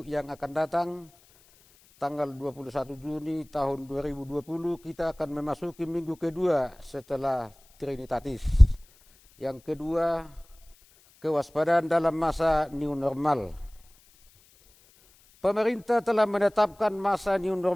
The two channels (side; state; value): left; noise; hiss, 29 dB below the sound